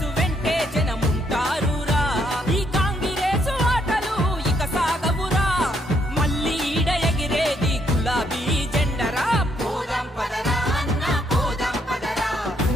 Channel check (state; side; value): normal; both; correlation 0.73